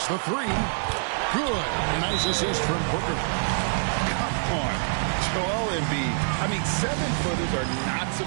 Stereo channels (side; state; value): left; silent; 61 dB below the other